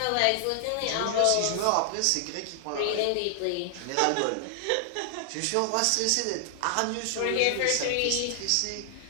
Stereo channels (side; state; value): both; different; correlation 0.00